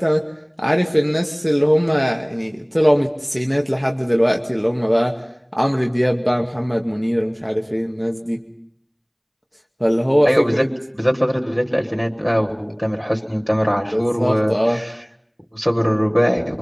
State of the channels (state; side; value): identical; both; correlation 1.00